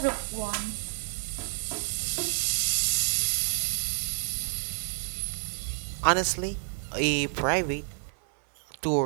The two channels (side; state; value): left; silent; 58 dB below the other